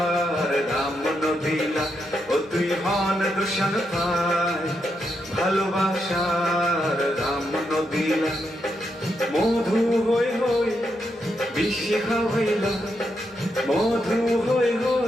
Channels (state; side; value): normal; both; correlation 0.82